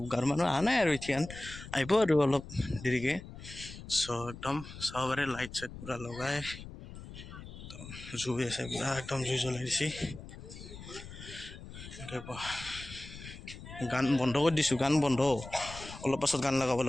গাঁৱৰ মানুহ অহা নাই আৰু এতিয়া আহিব আৰু অলপ দেৰিকৈ চ' একদম চাব পাৰে লাইট চাইট পূৰা লগাই একদম জুই আছে পূৰা একদম জুই জ্বলাই দিছে গান বন্ধ কৰি দিছোঁ গান বন্ধ অলপ পাছত গান লগাব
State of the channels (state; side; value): noise; left; rumble, 13 dB below the sound